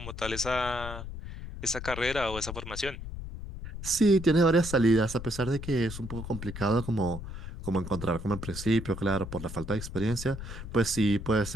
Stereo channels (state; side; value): noise; left; rumble, 9 dB below the sound